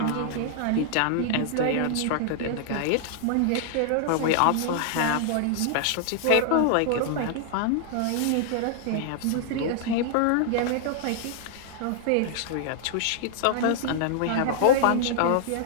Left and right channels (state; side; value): different; both; correlation -0.01